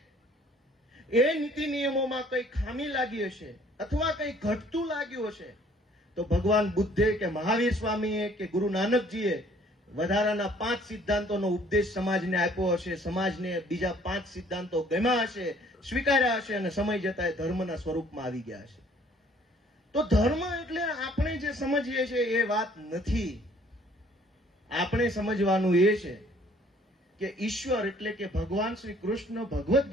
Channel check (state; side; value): normal; both; correlation 0.58